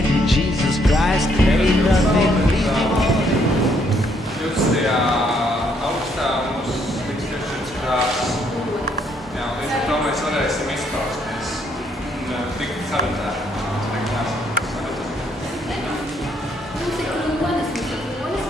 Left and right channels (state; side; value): normal; both; correlation 0.70